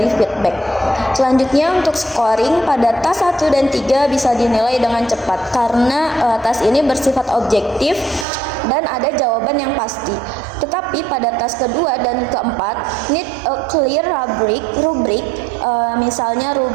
feedback. Selanjutnya untuk scoring, pada tas 1 dan 3 bisa dinilai dengan cepat karena tas ini bersifat objektif dan ada jawaban yang pasti. Tetapi pada tas kedua dan keempat need a clear rubrik, misalnya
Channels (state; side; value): drops out; left; at 8.2 s